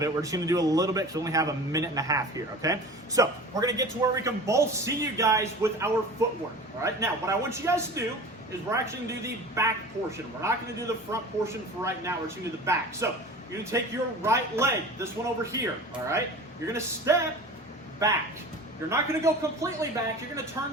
it, we're just gonna do a little bit because we only have 1.5 minutes here, okay? So, we're gonna get to where we can both see you guys with our footwork, all right? Now, what I want you guys to do is we're actually gonna do the back portion. We're not gonna do the front portion for right now, we're just gonna do the back. So, you're gonna take your right leg, this one over here, all right? You're gonna step back. You're not going to go completely back. You're going to turn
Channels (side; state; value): both; normal; correlation 0.38